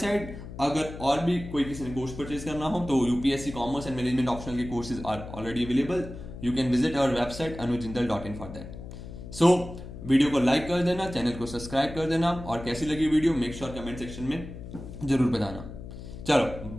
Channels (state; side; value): noise; left; hum, 12 dB below the sound